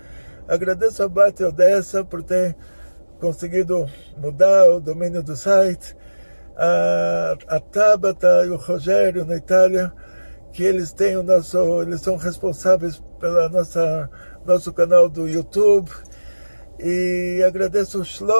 Agradeço a Bati Odessa por ter conseguido mudar o domínio do site, a Tabata e o Rogério na Itália, que eles são responsáveis pela nosso canal do YouTube. E agradeço o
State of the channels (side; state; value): both; inverted; correlation -1.00